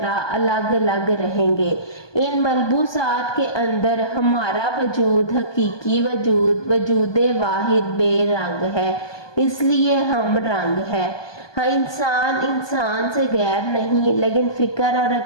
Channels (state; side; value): late; right; 1.2 ms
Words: الگ الگ رہیں گے۔ ان ملبوسات کے اندر ہمارا وجود، حقیقی وجود، وجود واحد بے رنگ ہے، اس لیے ہم رنگ ہے۔ ہاں، انسان سے غیر نہیں، لیکن فکر اور